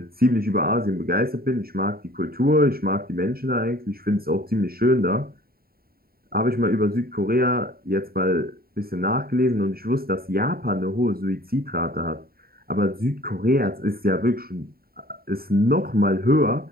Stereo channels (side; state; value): left; late; 0.44 ms